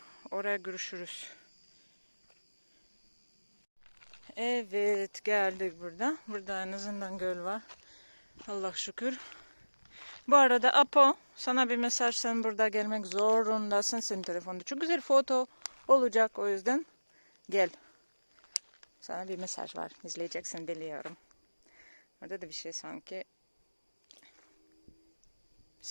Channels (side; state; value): both; inverted; correlation -1.00